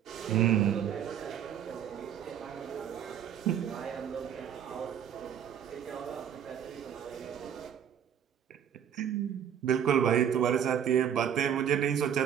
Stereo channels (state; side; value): quieter; left; 9.1 dB